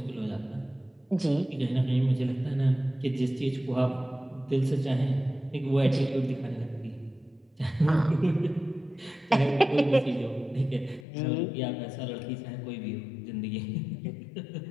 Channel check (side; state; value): right; drops out; at 11.1 s